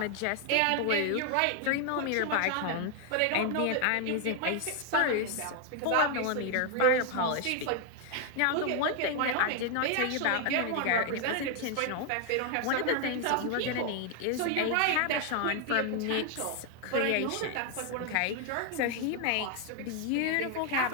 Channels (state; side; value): different; both; correlation 0.00